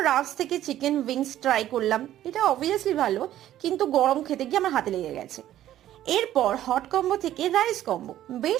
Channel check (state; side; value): quieter; left; 12.7 dB